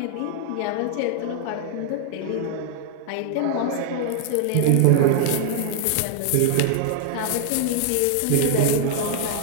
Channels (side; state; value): both; different; correlation 0.00